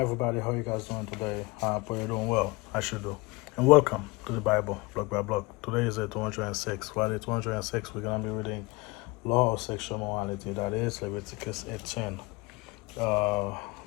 How you guys doing today? I hope you're doing well. I should do. And welcome to the Bible, block by block. Today is day 206. For day 206, we're going to be reading Law of Sexual Morality. That is Leviticus 18. Before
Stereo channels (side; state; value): right; quieter; 24.4 dB